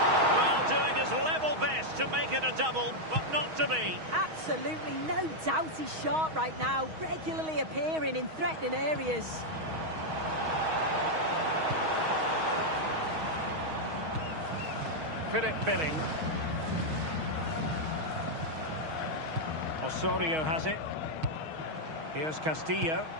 Well, doing his level best to make it a double, but not to be. Absolutely no doubt he's sharp right now, regularly appearing in threatening areas. Philip Billing. Osorio has it. Here's Castillo.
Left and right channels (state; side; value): late; left; 6.3 ms